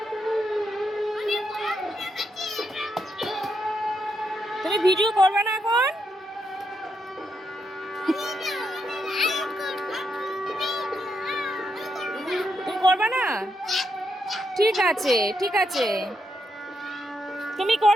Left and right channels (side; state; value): both; normal; correlation 0.81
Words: তুমি ভিডিও করবে না এখন? তুমি করবে না? ঠিক আছে, ঠিক আছে। তুমি